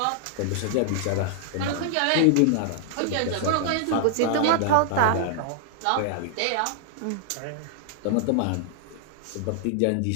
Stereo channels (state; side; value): different; both; correlation 0.00